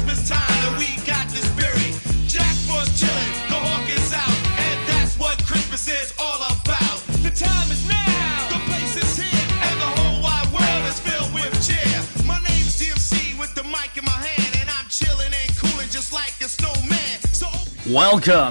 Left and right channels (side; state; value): both; inverted; correlation -1.00